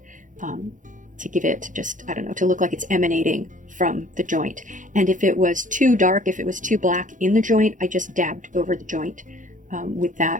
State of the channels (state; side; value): late; left; 0.37 ms